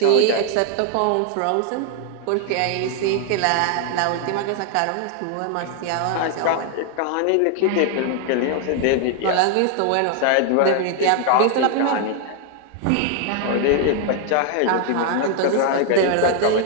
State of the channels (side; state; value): both; different; correlation 0.00